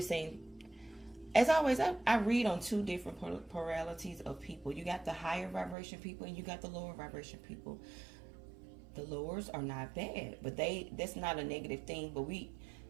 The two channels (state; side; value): drops out; left; at 5.8 s